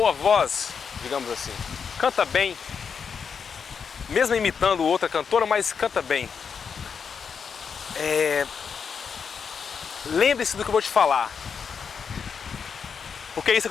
voz, digamos assim, canta bem, mesmo imitando outra cantora, mas canta bem. Lembre-se do que eu vou te falar, porque isso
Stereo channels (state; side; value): quieter; right; 6.3 dB